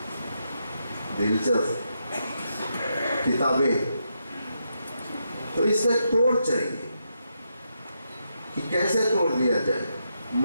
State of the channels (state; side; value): inverted; both; correlation -0.82